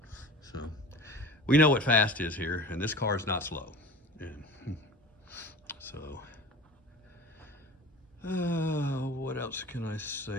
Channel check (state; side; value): normal; both; correlation 0.36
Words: So we know what fast is here, and this car is not slow. And so, what else can I